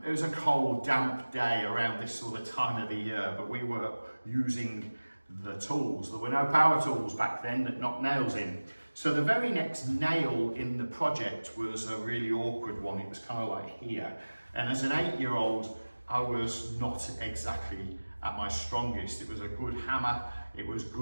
It was a cold, damp day around this sort of time of the year, but we were using the tools. There were no power tools back then that knocked nails in. So the very next nail in the project was a really awkward one. It was kind of like here. And as an 8-year-old, I was not exactly at my strongest. It was a good hammer, it was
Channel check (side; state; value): both; inverted; correlation -1.00